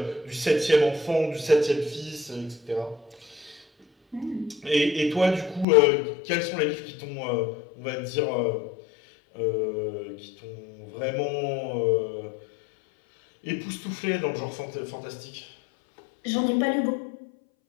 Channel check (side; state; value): right; drops out; at 5.7 s